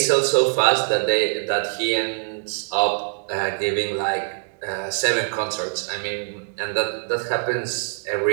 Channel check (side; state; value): left; silent; digital silence